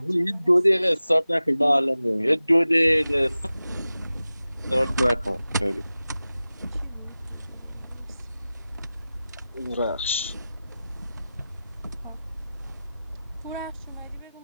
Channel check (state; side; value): inverted; both; correlation -0.95